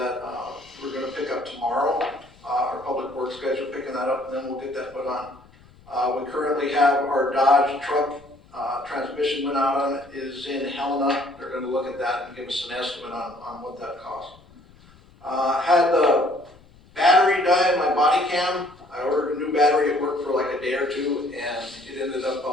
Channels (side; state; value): left; noise; rumble, 26 dB below the sound